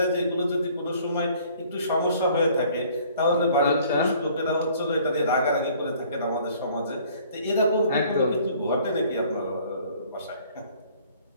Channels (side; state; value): both; inverted; correlation -0.56